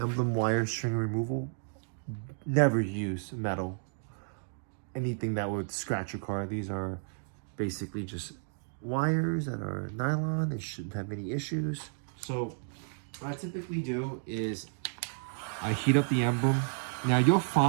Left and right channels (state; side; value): silent; left; digital silence